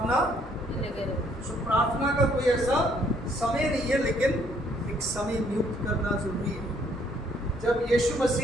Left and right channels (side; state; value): both; normal; correlation 0.66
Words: तो प्रार्थना का कोई ऐसा समय नहीं है, लेकिन एक समय नियुक्त करना जरूरी है। जब यीशु